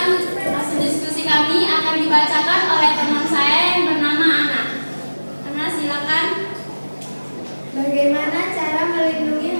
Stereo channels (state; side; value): inverted; both; correlation -1.00